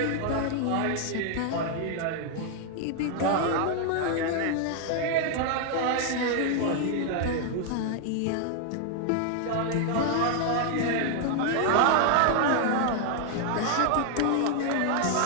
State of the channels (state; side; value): different; both; correlation 0.00